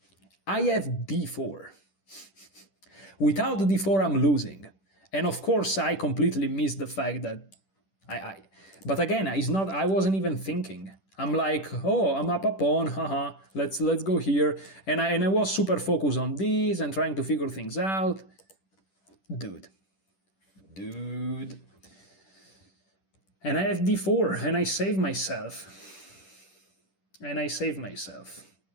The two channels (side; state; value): right; late; 10 ms